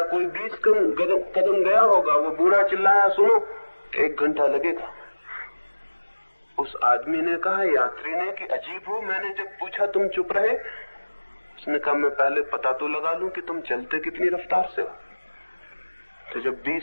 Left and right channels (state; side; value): inverted; both; correlation -1.00